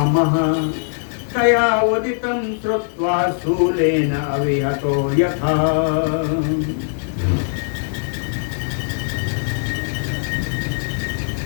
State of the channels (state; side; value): silent; right; 66 dB below the other